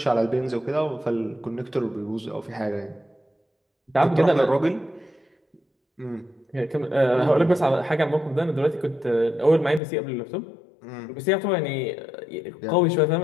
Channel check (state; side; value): drops out; right; at 9.8 s